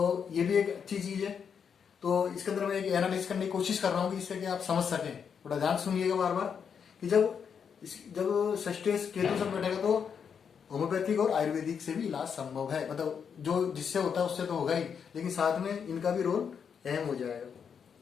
ये भी एक अच्छी चीज है। तो इसके अंदर मैं एक एनालिसिस करने की कोशिश कर रहा हूँ कि इससे कि आप समझ सकें। थोड़ा ध्यान सुनिएगा बार बार कि जब सस्टेस केतु साथ बैठेगा तो होम्योपैथिक और आयुर्वेदिक से भी इलाज संभव है। मतलब जो जिससे होता है उससे तो होगा ही, लेकिन साथ में इनका भी रोल अहम हो जाएगा,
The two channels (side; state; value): right; quieter; 7.0 dB